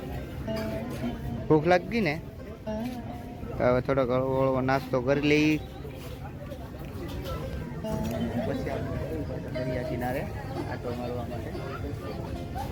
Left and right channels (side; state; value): both; identical; correlation 1.00